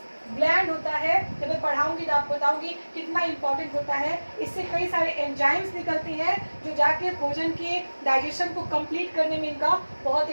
ग्लैंड होता है, जब मैं पढ़ाऊंगी तो आपको बताऊंगी कितना इंपॉर्टेंट होता है। इससे कई सारे एंजाइम्स निकलती हैं जो जाके भोजन के डाइजेशन को कंप्लीट करने में इनका बहुत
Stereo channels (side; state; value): both; inverted; correlation -1.00